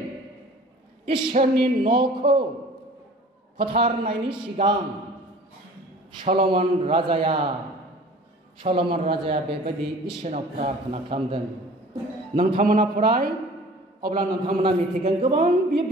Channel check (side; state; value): both; normal; correlation 0.46